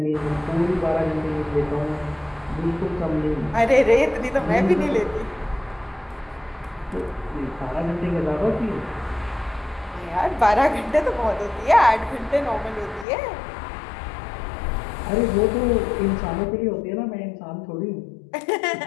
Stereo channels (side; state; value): right; drops out; at 13.1 s